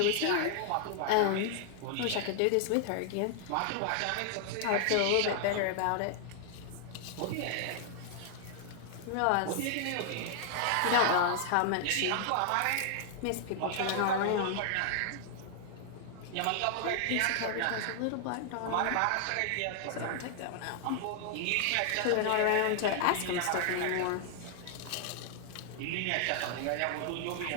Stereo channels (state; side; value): different; both; correlation 0.00